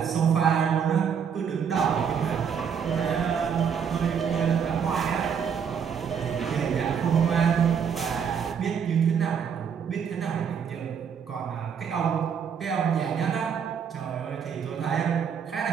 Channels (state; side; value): quieter; left; 7.2 dB